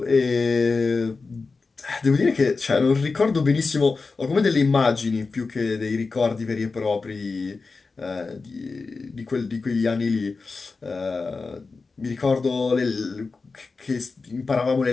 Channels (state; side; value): quieter; right; 4.2 dB